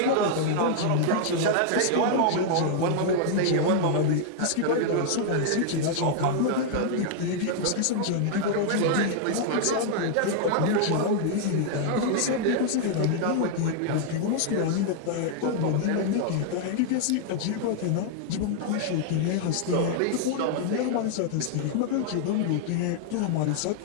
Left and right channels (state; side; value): different; both; correlation 0.00